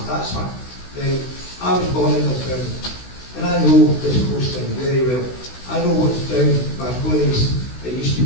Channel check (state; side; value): late; right; 16 ms